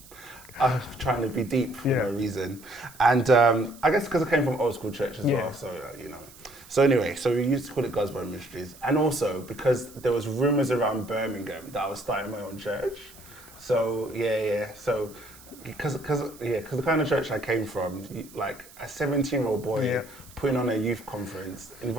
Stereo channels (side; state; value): right; noise; hiss, 21 dB below the sound